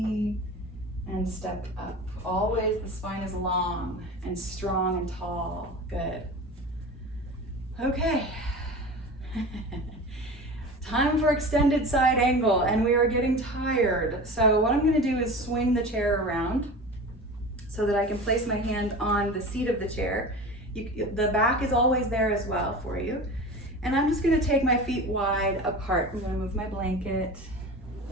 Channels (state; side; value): normal; both; correlation 0.33